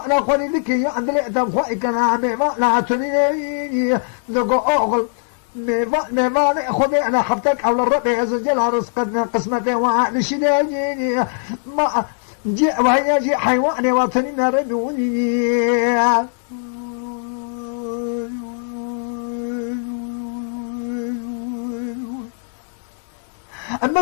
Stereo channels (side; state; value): right; silent; 66 dB below the other